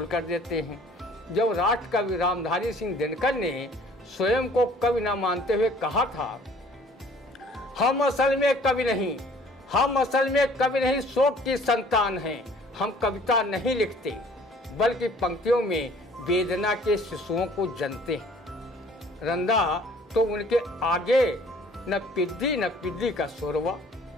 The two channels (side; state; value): both; normal; correlation 0.54